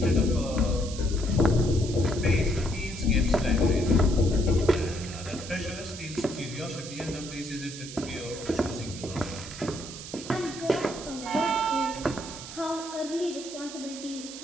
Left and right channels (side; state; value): right; noise; hiss, 12 dB below the sound